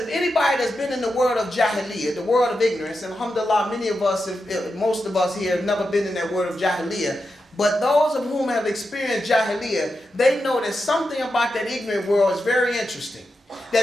anybody that's been in the world of jahiliyyah, the world of ignorance, and alhamdulillah, many of us, most of us here have never been in that world of jahiliyyah, but those of whom have experienced jahiliyyah, they know that something about that ignorant world is very interesting.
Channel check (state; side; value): normal; both; correlation 0.88